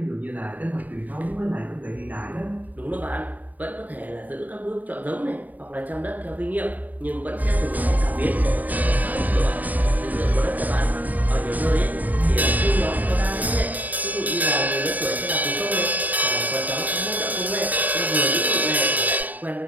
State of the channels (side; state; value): left; late; 0.079 ms